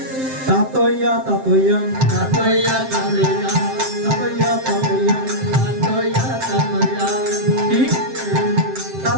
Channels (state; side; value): late; left; 7.7 ms